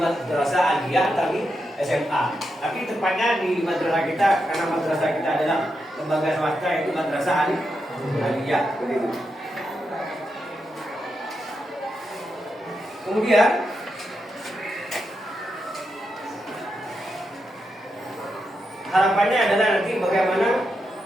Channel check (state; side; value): normal; both; correlation 0.85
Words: aliyah atau di SMA. Tapi tepatnya di madrasah kita, karena madrasah kita adalah lembaga swasta, yaitu madrasah aliyah begitu. Kemudian harapannya adalah nanti bagaimana